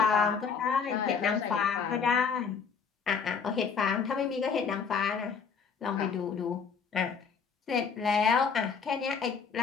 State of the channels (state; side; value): quieter; right; 6.0 dB